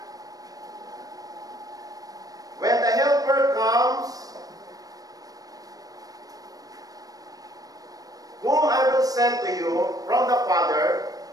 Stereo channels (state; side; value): late; left; 0.18 ms